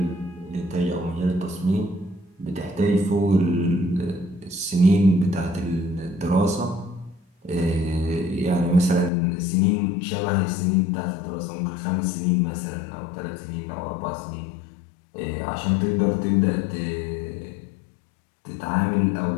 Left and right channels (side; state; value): right; drops out; at 9.1 s